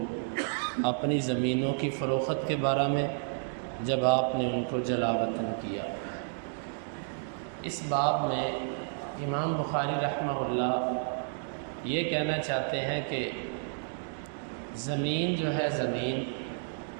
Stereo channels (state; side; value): silent; left; digital silence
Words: اپنی زمینوں کی فروخت کے بارے میں جب آپ نے ان کو جلا وطن کیا. اس باب میں امام بخاری رحمہ اللہ یہ کہنا چاہتے ہیں کہ زمین جو ہے زمین